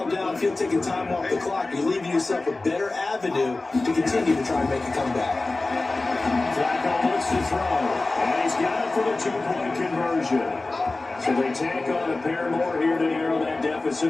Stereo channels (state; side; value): quieter; right; 3.2 dB